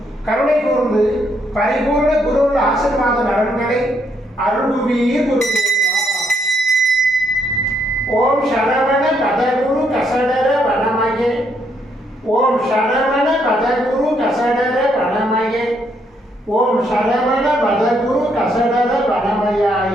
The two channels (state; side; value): normal; both; correlation 0.73